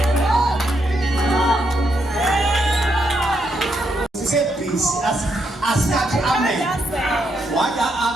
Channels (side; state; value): both; normal; correlation 0.79